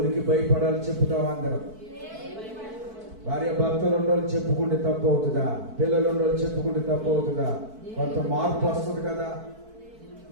భయపడాలి చెప్పుతామా? అందరం భార్య భర్తలు ఉండోళ్ళు చెప్పుకుంటే తప్పు అవుతుందా? పిల్లలు ఉండోళ్ళు చెప్పుకుంటే తప్పు అవుతుందా? కొంత మార్పు వస్తుంది కదా,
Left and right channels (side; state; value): left; late; 4.5 ms